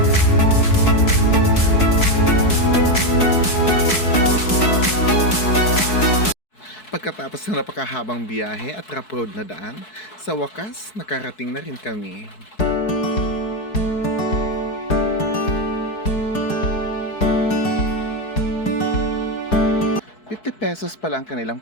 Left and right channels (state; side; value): late; right; 4.6 ms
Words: Pagkatapos ng napakahabang biyahe at rough road na daan, sa wakas nakarating na rin kami. 50 pesos pala ang kanilang